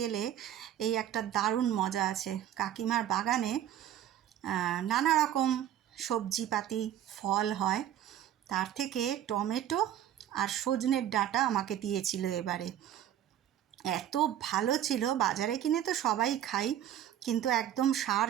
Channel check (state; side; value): quieter; left; 11.2 dB